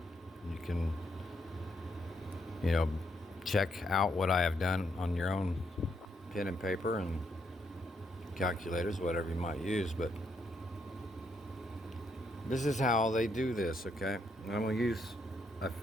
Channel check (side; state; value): both; normal; correlation 0.76